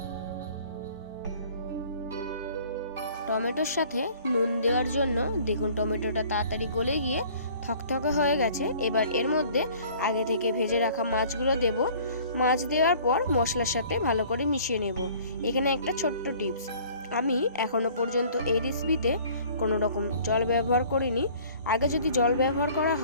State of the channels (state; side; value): inverted; both; correlation -0.52